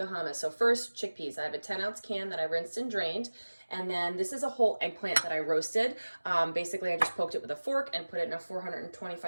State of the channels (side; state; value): both; inverted; correlation -1.00